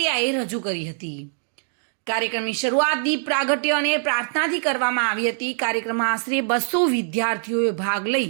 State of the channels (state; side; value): silent; left; digital silence